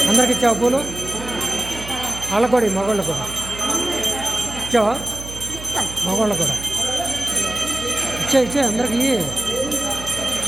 అందరికి ఇచ్చావు పూలు వాళ్ళకు కూడా మగవాళ్ళు కూడా ఇచ్చావా మగవాళ్ళు కూడా ఇచ్చే అందరికి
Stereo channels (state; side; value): noise; right; hum, 13 dB below the sound